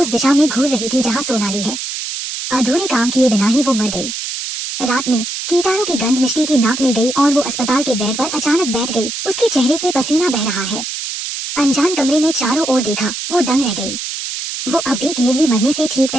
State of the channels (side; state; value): right; noise; hiss, 6 dB below the sound